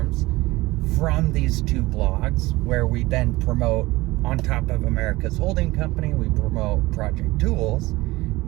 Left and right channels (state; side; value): quieter; left; 19.9 dB